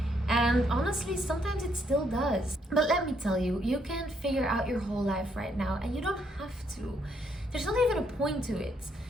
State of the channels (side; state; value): both; normal; correlation 0.73